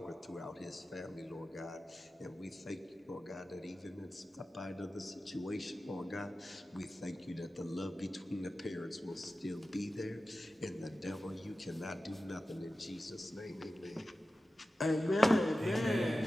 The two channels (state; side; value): normal; both; correlation 0.95